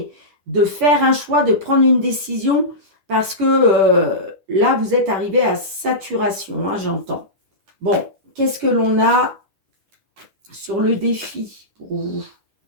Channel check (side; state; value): left; late; 10 ms